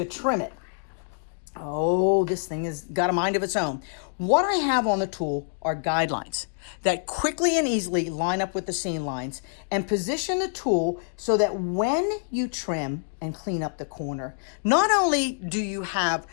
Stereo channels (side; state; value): right; silent; digital silence